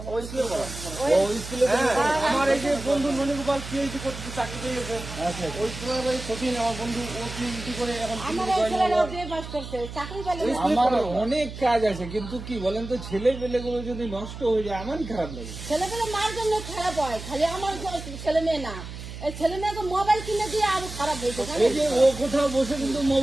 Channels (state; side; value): noise; right; hum, 11 dB below the sound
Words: আমার এই যে বন্ধু মণিগোপাল পিএইচডি করতে চাকরি পেয়েছে, ওই স্কুলের সচিন আমার বন্ধু, ও পিএইচডি করে এখন আমার অনেক কাজ আছে, কিন্তু কি বলেন তো, ছেলে পেলে গুলো যদি নষ্ট হয়ে যায় আমারই খারাপ লাগে। ছেলে পেলে মার জন্য খারাপ হয়, খালি আমার ছেলে মেয়ে না, এই ছেলে মেয়েকে মোবাইল কিনে দিয়ে আরো খারাপ হয়েছে। এই যে ও কোথাও বসে কিন্তু